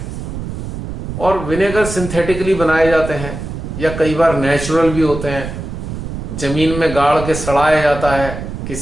और विनेगर सिंथेटिकली बनाए जाते हैं या कई बार नेचुरल भी होते हैं। जमीन में गाड़ के सड़ाया जाता है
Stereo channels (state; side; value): noise; right; rumble, 7 dB below the sound